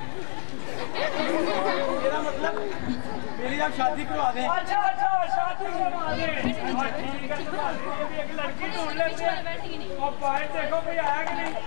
मेरा मतलब मेरी आप शादी करवा दें। अच्छा अच्छा शादी करवा दें। ठीक है भी एक लड़की ढूंढ लेते हैं और बाहर देखो कोई आया कि नहीं।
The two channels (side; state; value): right; silent; digital silence